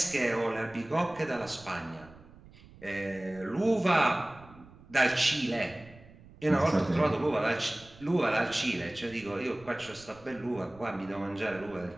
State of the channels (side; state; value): right; noise; rumble, 22 dB below the sound